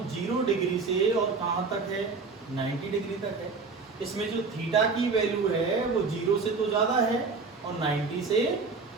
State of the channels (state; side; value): quieter; left; 4.4 dB